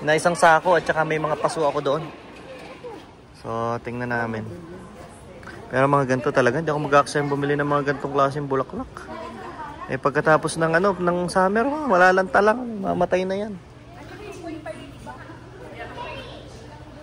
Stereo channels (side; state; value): both; identical; correlation 1.00